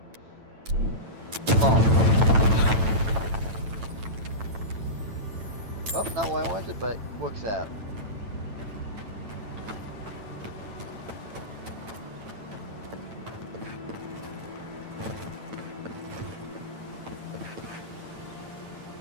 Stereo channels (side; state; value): left; late; 9.0 ms